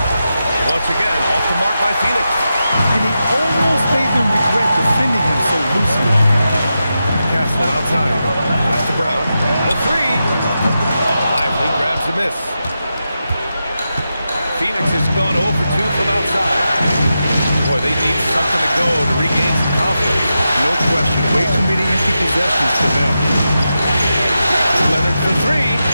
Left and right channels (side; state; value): both; inverted; correlation -0.89